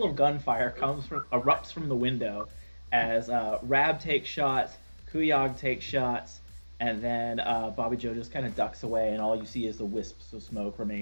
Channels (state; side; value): inverted; both; correlation -1.00